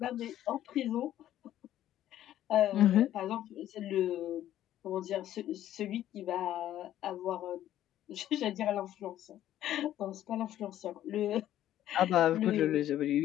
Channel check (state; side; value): quieter; right; 12.4 dB